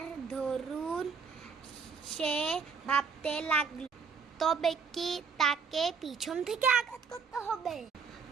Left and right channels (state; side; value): quieter; left; 5.8 dB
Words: দরুন সে ভাবতে লাগলো, তবে কি তাকে পিছন থেকে আঘাত করতে হবে?